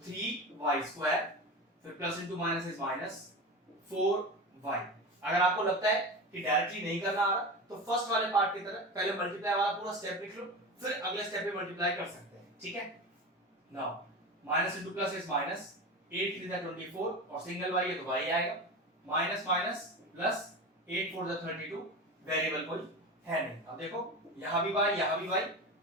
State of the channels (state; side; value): normal; both; correlation 0.27